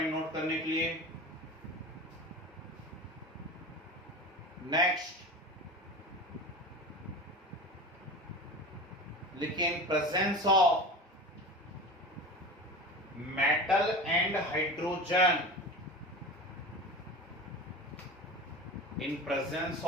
नोट करने के लिए। नेक्स्ट लिखिए, in presence of metal and hydrogen, in presence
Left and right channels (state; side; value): normal; both; correlation 0.31